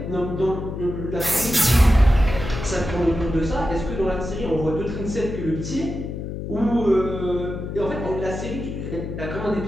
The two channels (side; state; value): left; noise; hum, 6 dB below the sound